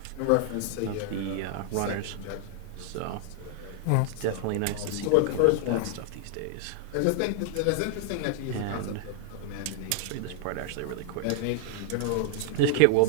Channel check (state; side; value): different; both; correlation 0.00